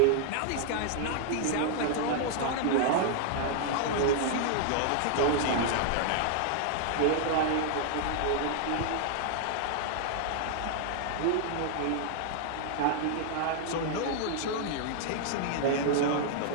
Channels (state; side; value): different; both; correlation 0.00